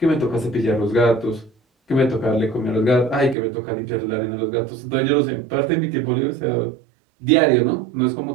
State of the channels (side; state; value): left; drops out; at 3.4 s